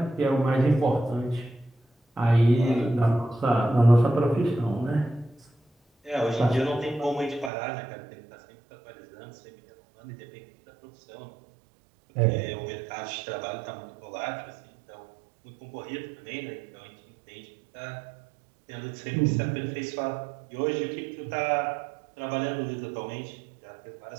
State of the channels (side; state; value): left; drops out; at 7.5 s